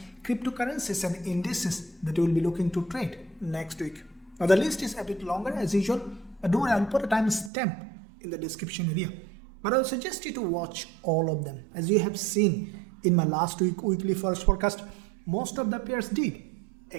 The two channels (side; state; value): left; drops out; at 7.5 s